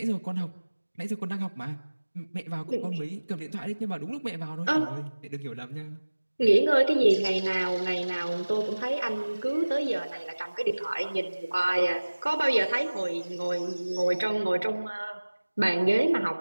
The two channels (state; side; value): inverted; both; correlation -1.00